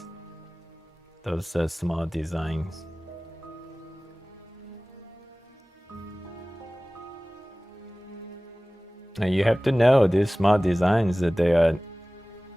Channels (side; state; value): both; normal; correlation 0.98